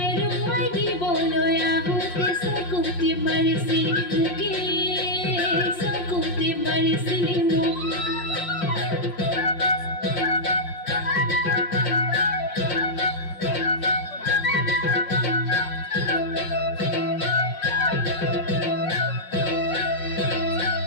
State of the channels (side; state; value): right; late; 5.4 ms